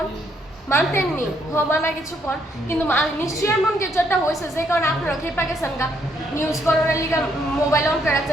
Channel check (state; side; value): normal; both; correlation 0.72